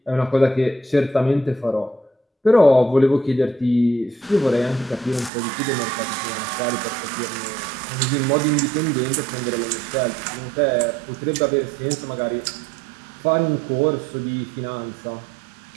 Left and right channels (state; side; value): drops out; left; at 5.3 s